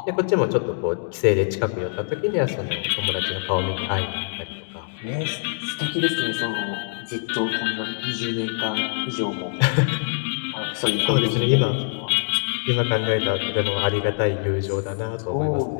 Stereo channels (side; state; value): right; silent; digital silence